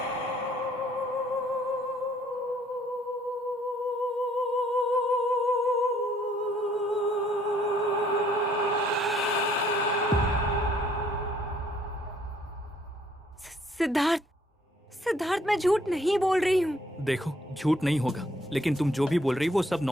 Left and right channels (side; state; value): both; normal; correlation 0.64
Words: सिद्धार्थ, मैं झूठ नहीं बोल रही हूँ। देखो, झूठ नहीं होगा, लेकिन तुम जो भी बोल रही हो वो सब